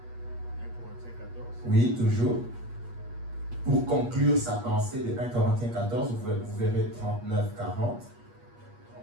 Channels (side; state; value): left; late; 8.4 ms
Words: 1 Corinthiens 14. Oui, toujours. Pour conclure sa pensée de 1 Corinthiens 14, vous verrez 39-40.